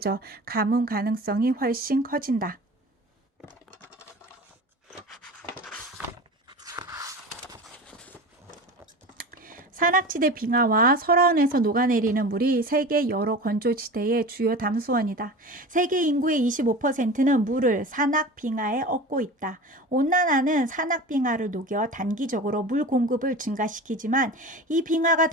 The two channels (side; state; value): both; normal; correlation 0.33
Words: 가뭄 가능성이 훨씬 커진다. 산악지대 빙하와 설화원에서 녹아내리는 물이 세계 여러 건조지대의 주요 담수원이다. 세계 인구의 25%는 물을 산악 빙하에 얻고 있다. 온난화는 산악 빙하를 녹여 단기적으로 물 공급을 증가시키지만 이 빙하가